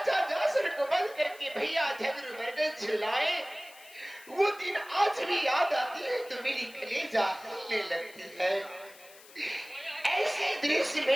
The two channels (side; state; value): left; noise; hiss, 21 dB below the sound